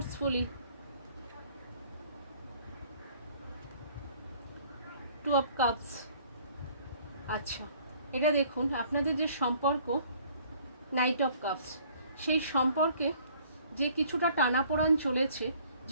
two of cups. আচ্ছা, এটা দেখুন আপনাদের যে সম্পর্ক, নাইট অফ কাপস, সেই সম্পর্কে যে কিছুটা টানাপোড়ান চলেছে,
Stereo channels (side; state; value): both; inverted; correlation -0.57